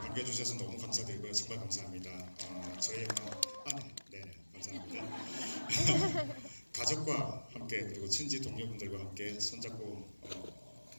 너무 감사드리고요. 정말 감사합니다. 저희 영화 네, 감사합니다. 가족과 함께 그리고 친지 동료분들과 함께 손잡고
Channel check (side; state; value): both; inverted; correlation -1.00